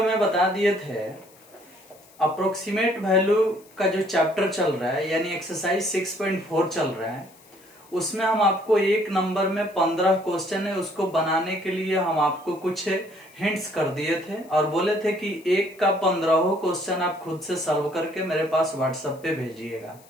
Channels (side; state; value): left; noise; hiss, 27 dB below the sound